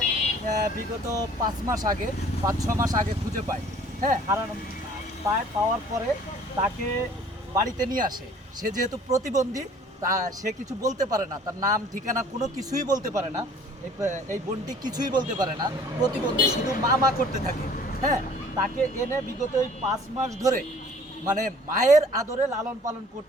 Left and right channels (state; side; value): normal; both; correlation 0.53